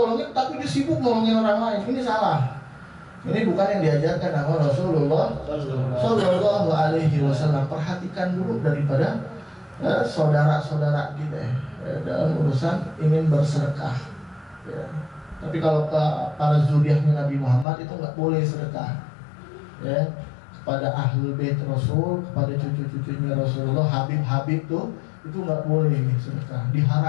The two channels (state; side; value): drops out; right; at 17.7 s